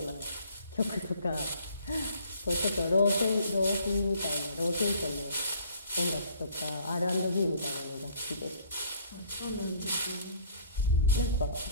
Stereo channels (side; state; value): both; inverted; correlation -0.56